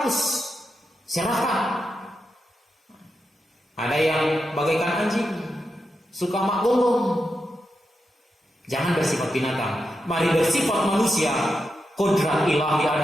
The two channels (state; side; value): normal; both; correlation 0.87